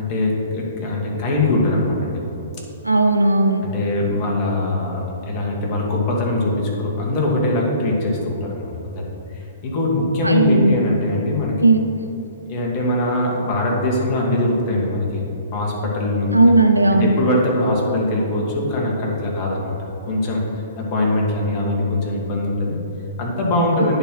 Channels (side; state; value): both; inverted; correlation -0.55